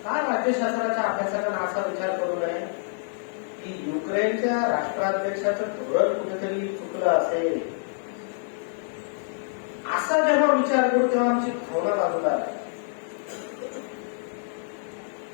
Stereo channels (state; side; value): silent; right; digital silence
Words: काय राज्यशास्त्राच्या अभ्यासकांना असा विचार करू नये की युक्रेनच्या राष्ट्राध्यक्षाचं धोरण कुठेतरी चुकलं असेल. असा जेव्हा विचार करू तेव्हा आमची भावना बाजूला आहे.